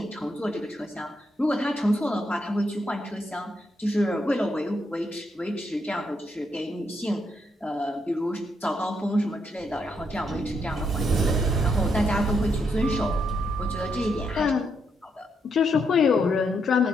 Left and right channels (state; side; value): normal; both; correlation 0.78